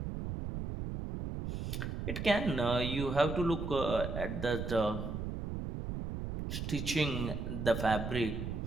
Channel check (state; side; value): noise; right; rumble, 4 dB below the sound